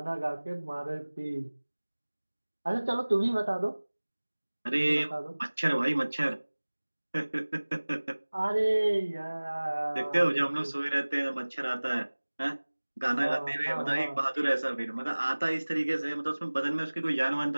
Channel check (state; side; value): inverted; both; correlation -1.00